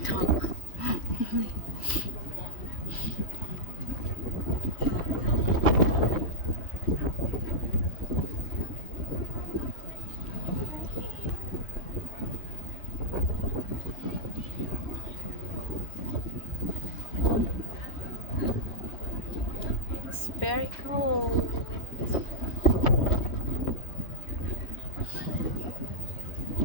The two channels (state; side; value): late; right; 3.1 ms